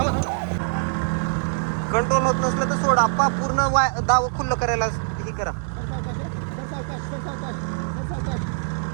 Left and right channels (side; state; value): left; silent; digital silence